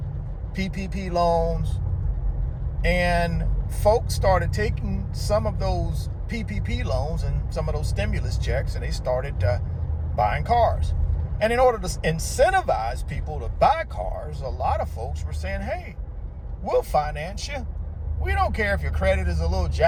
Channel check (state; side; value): identical; both; correlation 1.00